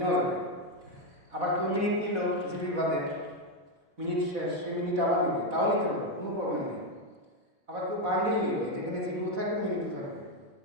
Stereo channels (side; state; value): left; late; 4.1 ms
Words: যাবে। আবার কেউ মিনিট নিল জিবি বাদে, মিনিট শেষ, সে মিনিট আবার নিবে, তাও নিতে পারবে, কোনো প্রবলেম নেই। আবার কেউ বান্ডিল নিল, যেখানে জিবিও থাকবে মিনিটও থাকবে,